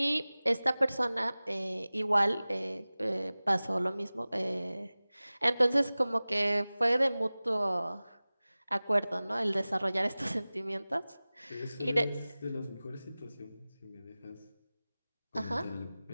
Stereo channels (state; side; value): inverted; both; correlation -0.98